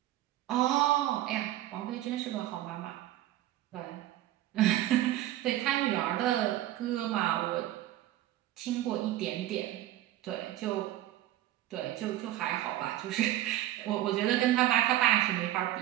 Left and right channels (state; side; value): quieter; left; 14.1 dB